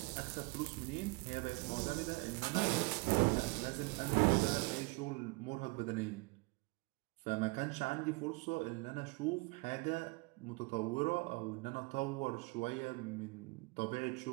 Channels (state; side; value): quieter; left; 27.6 dB